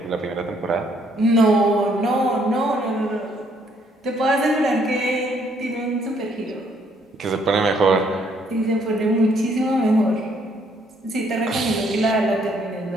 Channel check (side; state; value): both; normal; correlation 0.68